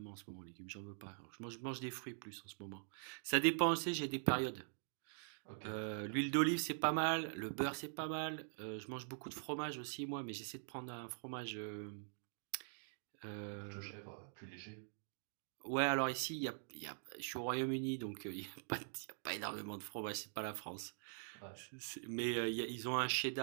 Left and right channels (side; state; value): left; silent; digital silence